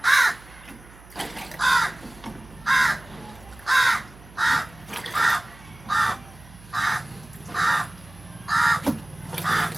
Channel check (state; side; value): noise; right; hum, 22 dB below the sound